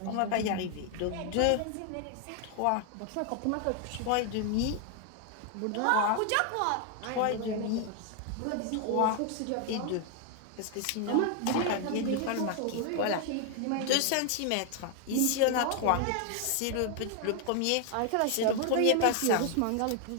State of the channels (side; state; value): both; different; correlation 0.00